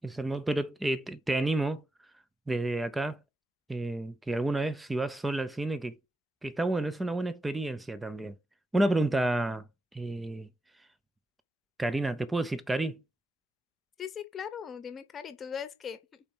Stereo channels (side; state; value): both; normal; correlation 0.88